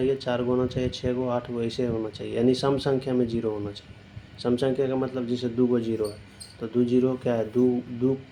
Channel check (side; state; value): both; identical; correlation 1.00